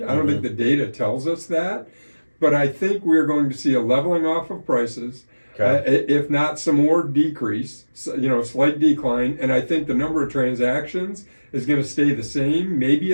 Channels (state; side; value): inverted; both; correlation -1.00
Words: I don't think the data tells us that, but I think we're going to see a leveling off of prices. If not some more decrease, slight decline, and I think the number of transactions is going to stay the same, maybe